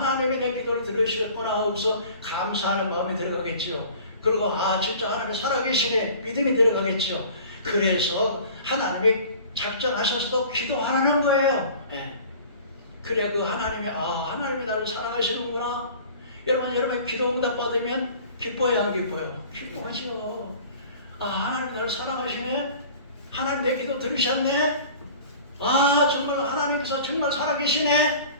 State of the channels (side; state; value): both; inverted; correlation -0.45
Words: 내 기도를 들으시겠구나 하고서 감사하는 마음이 들어가겠죠. 그리고 진짜 하나님이 살아계시네 믿음이 들어가겠죠. 그래서 하나님이 작정하셔서 기도하는 거예요. 네. 그래 그 하나님이 하나님이 나를 사랑하시는구나. 여러분 기도 응답 받으면 기뻐요 안 기뻐요? 기뻐하죠. 하나님이 나를 사랑하시네. 하나님 내 기도 들으셨네. 정말 하나님께서 정말 살아계시네.